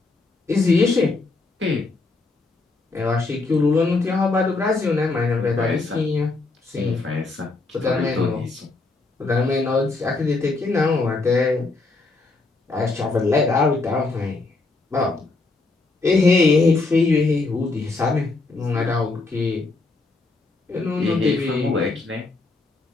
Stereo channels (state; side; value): quieter; right; 3.6 dB